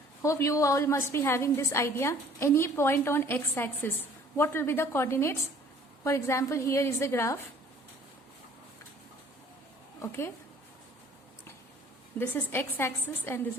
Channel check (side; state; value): both; normal; correlation 0.54